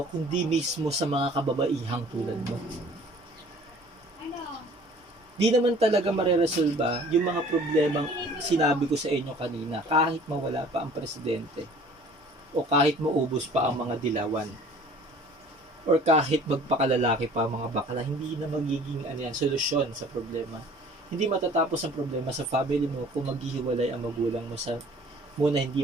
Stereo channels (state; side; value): normal; both; correlation 0.50